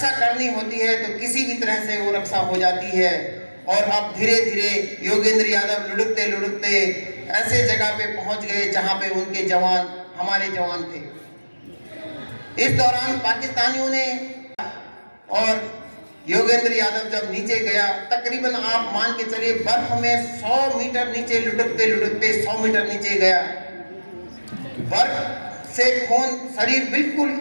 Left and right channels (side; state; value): both; inverted; correlation -1.00